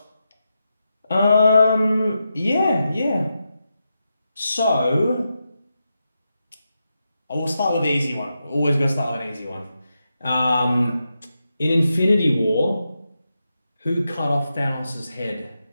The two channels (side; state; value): both; inverted; correlation -0.87